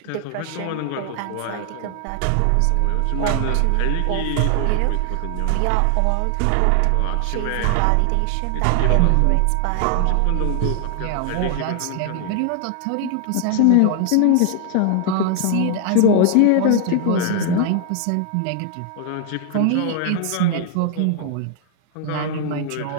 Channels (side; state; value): both; different; correlation 0.00